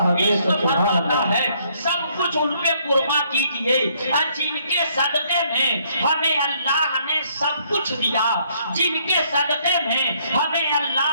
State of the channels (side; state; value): both; inverted; correlation -0.67